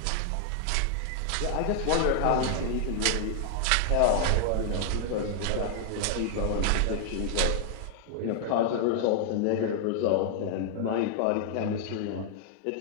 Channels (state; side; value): different; both; correlation 0.00